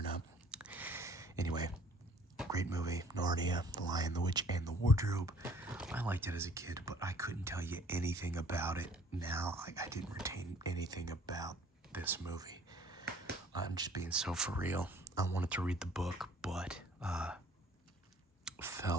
not. Anyway, great movie. Narnia, The Lion, the Witch, and the Wardrobe. I liked it as a kid, but I couldn't tell you anything about it now. I didn't retain anything about this movie. I'm just being so for real. I wanted to read the book, but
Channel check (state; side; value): normal; both; correlation 0.55